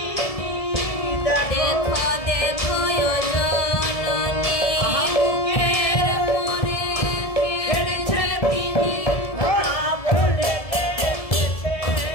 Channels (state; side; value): late; right; 1.7 ms